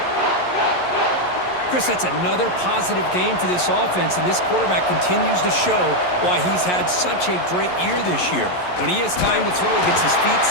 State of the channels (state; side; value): late; right; 11 ms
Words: Chris, that's another positive game for this offense, and this quarterback continues to show why he's had such a great year this year. When he has time to throw, he gets his feet